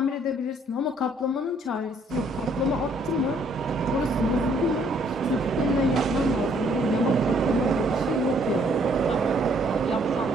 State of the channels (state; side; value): normal; both; correlation 0.65